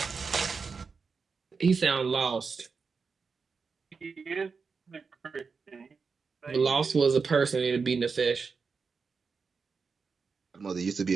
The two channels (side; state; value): left; quieter; 5.1 dB